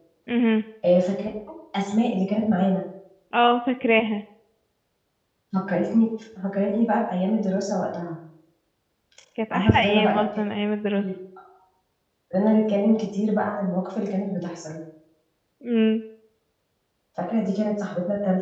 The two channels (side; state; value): both; identical; correlation 1.00